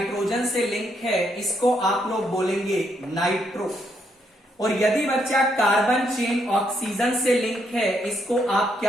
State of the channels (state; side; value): normal; both; correlation 0.75